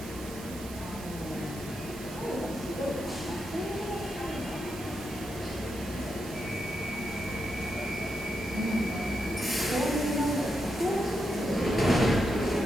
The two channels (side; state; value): right; noise; hiss, 15 dB below the sound